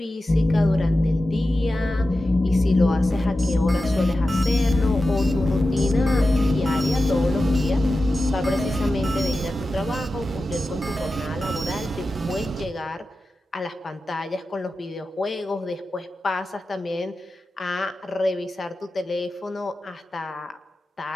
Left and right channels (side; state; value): both; normal; correlation 0.93